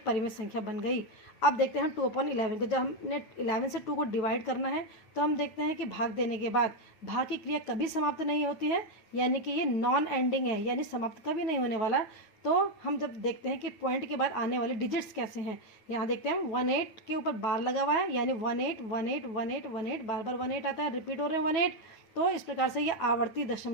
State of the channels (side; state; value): right; late; 9.3 ms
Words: परिमेय संख्या बन गई। अब देखते हैं 2/11 को, जब हमने 11 से 2 को डिवाइड करना है तो हम देखते हैं कि भाग देने के बाद भाग की क्रिया कभी समाप्त नहीं होती है, यानी कि ये नॉन एंडिंग है, यानी समाप्त कभी नहीं होने वाला। तो हम जब देखते हैं कि पॉइंट के बाद आने वाले डिजिट्स कैसे हैं, यहाँ देखते हैं 18 के ऊपर बार लगा हुआ है, यानी 18 18 18 18, बार 18 आता है, रिपीट हो रहे हैं 18, तो इस प्रकार से ये आवर्ती